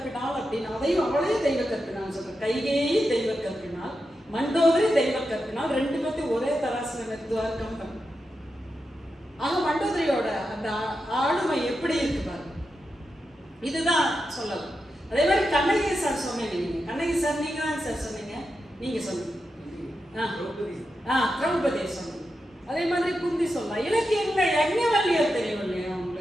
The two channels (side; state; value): both; normal; correlation 0.88